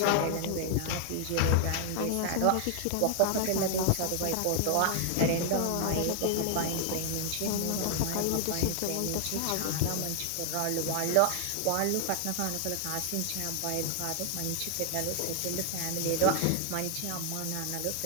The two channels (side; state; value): both; different; correlation 0.00